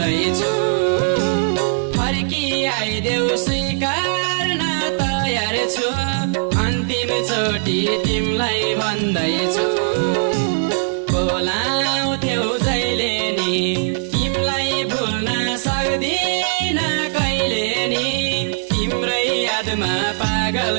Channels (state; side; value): silent; left; digital silence